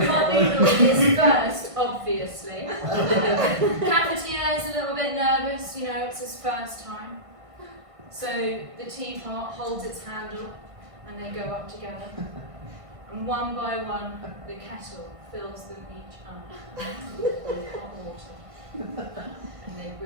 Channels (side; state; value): left; late; 1.5 ms